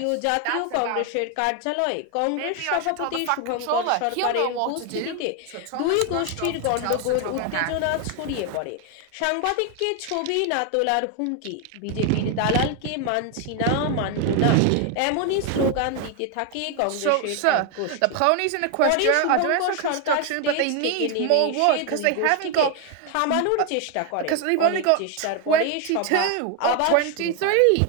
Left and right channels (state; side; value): different; both; correlation 0.01